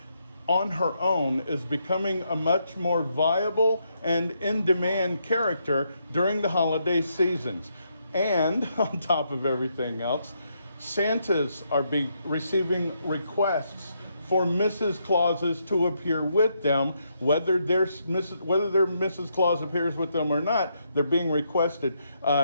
on her own is becoming a much more viable and in-demand character during the holiday seasons. And on top of everything else, Santas are receiving requests for Mrs. Clauses to appear with them, whether their Mrs. Claus appears with them or not. They're being requested.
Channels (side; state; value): both; inverted; correlation -0.78